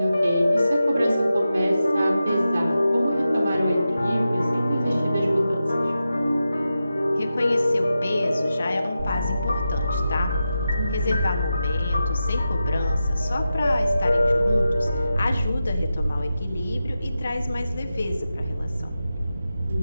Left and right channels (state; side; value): inverted; both; correlation -0.91